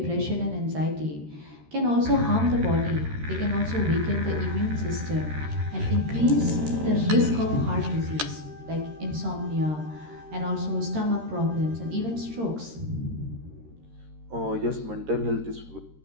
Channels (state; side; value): late; left; 13 ms